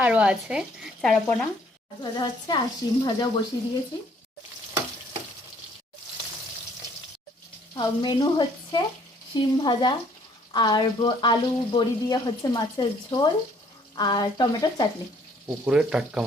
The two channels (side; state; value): both; normal; correlation 0.62